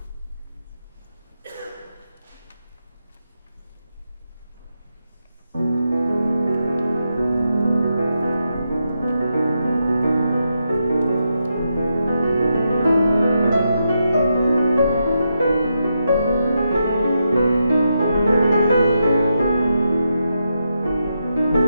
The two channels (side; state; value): both; inverted; correlation -0.84